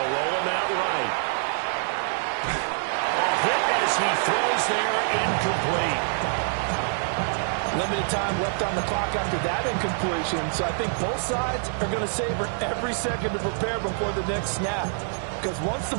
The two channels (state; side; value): silent; left; 59 dB below the other